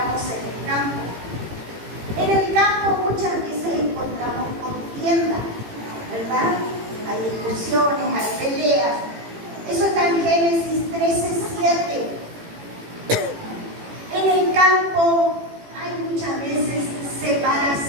en el campo. En el campo muchas veces encontramos contienda, ¿verdad? Hay discusiones, hay peleas. Eso está en Génesis 13:7. En el campo hay muchas veces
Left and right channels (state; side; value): late; left; 18 ms